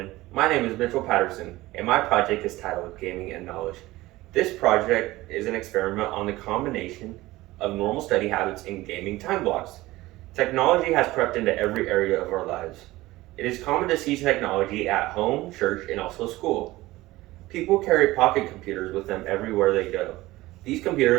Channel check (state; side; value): quieter; left; 18.4 dB